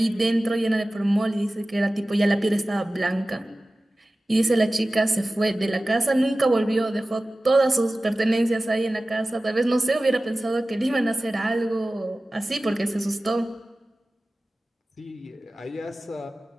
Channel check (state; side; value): normal; both; correlation 0.96